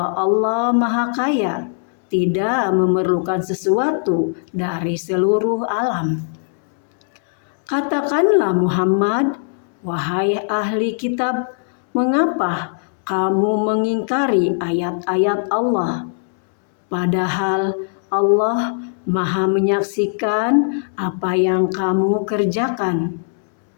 Allah Maha Kaya, tidak memerlukan sesuatu dari seluruh alam. Katakanlah Muhammad, wahai ahli kitab, mengapa kamu mengingkari ayat-ayat Allah? Padahal Allah Maha menyaksikan apa yang kamu kerjakan.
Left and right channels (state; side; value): silent; right; 65 dB below the other